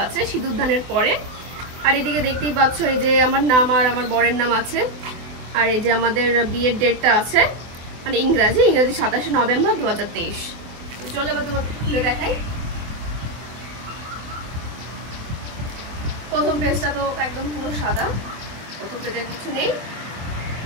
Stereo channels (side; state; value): left; late; 24 ms